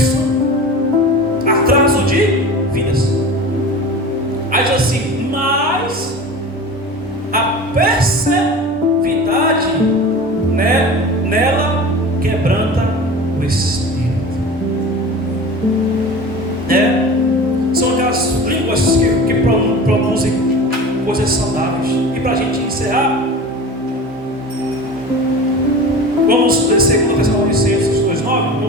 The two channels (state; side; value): normal; both; correlation 0.34